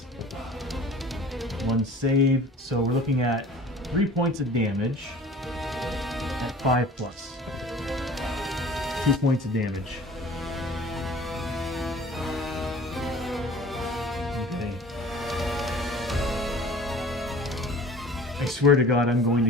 1 save. So we're looking at 3 points of damage at 5 plus. 2 points of damage. Okay. I swear to God, I'm going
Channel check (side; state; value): both; normal; correlation 0.45